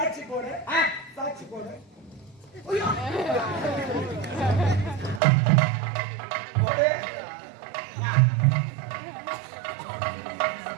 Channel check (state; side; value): drops out; left; at 5.2 s